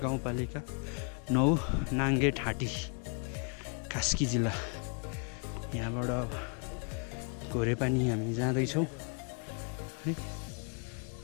गाउँपालिका 9 नाङ्गे ठाँटी कास्की जिल्ला यहाँबाट घोरे पानी हामी जाँदैछौँ है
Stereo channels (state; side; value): quieter; right; 37.8 dB